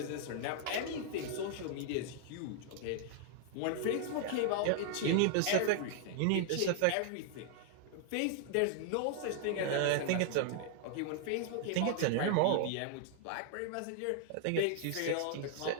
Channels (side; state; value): both; different; correlation 0.00